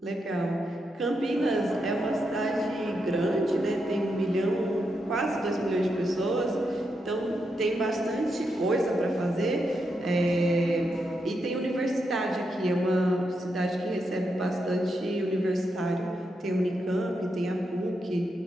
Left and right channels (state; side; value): normal; both; correlation 0.83